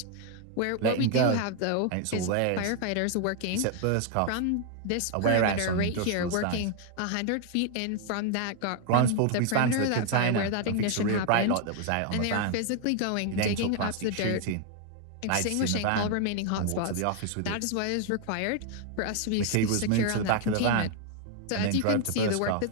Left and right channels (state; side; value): different; both; correlation 0.00